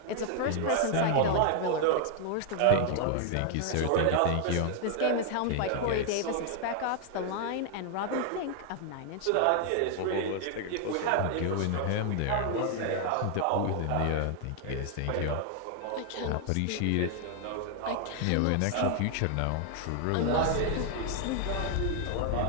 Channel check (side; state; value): both; different; correlation 0.00